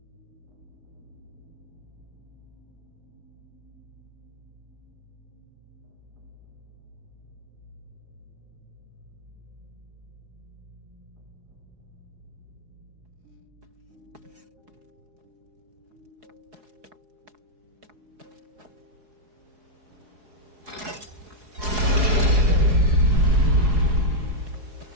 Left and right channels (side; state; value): left; late; 4.7 ms